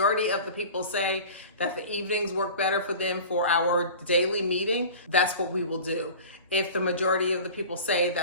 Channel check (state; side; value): inverted; both; correlation -0.38